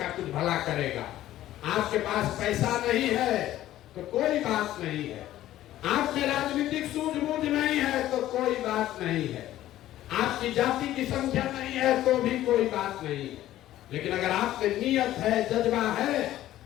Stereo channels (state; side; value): quieter; right; 13.8 dB